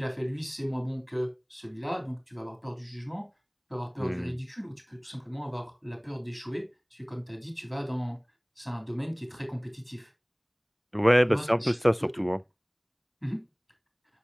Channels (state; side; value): identical; both; correlation 1.00